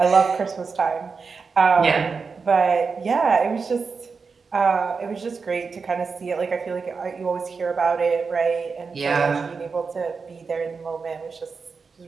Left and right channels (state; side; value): quieter; left; 5.0 dB